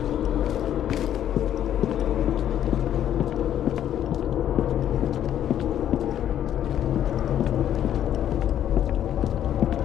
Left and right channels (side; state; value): right; quieter; 10.7 dB